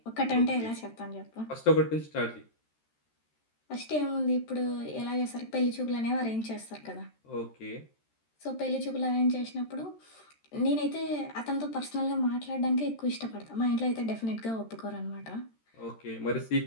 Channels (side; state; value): right; late; 13 ms